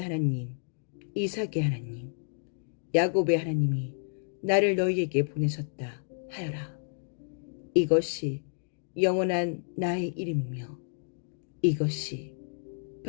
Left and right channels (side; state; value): right; silent; digital silence